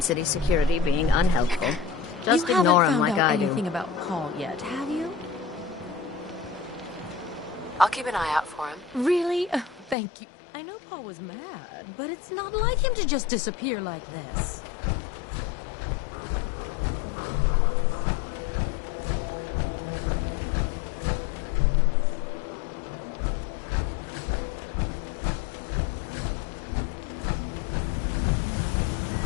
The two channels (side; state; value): right; drops out; at 10.0 s